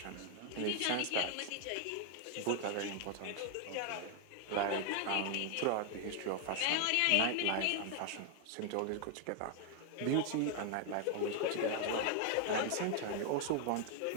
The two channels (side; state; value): both; different; correlation 0.00